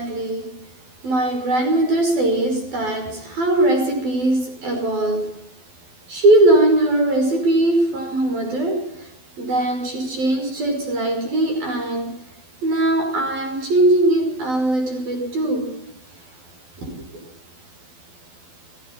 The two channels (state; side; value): late; left; 12 ms